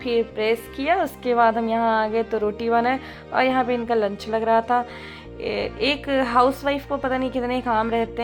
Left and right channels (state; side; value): identical; both; correlation 1.00